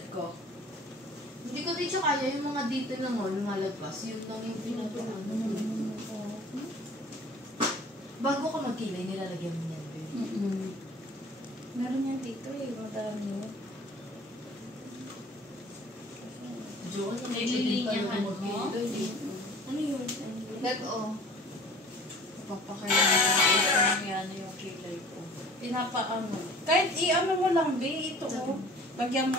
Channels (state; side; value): normal; both; correlation 0.46